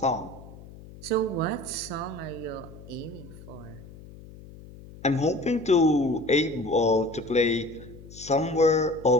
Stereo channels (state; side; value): noise; left; hum, 18 dB below the sound